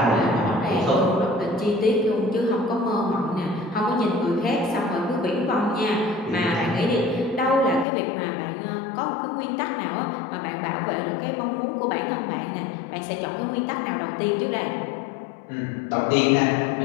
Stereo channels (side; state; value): right; drops out; at 7.9 s